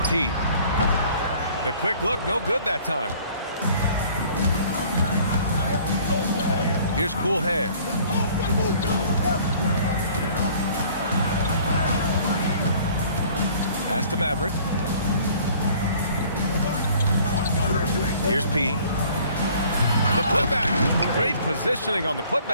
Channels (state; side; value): inverted; both; correlation -0.53